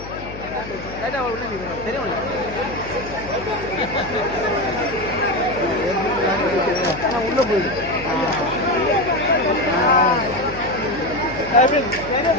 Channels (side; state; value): left; noise; hum, 13 dB below the sound